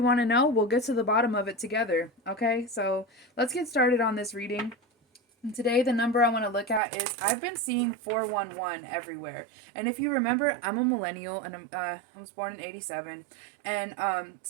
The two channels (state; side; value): drops out; left; at 6.8 s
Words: want to know, we'll get to the bottom of it together. Okay, so let's get started on this reading. And today, the number I want to look at is I've been seeing 411 everywhere. And if you remember, I'm a millennial and I was born in 87. And